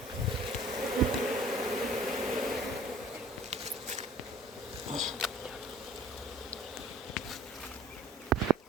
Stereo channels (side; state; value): both; normal; correlation 0.50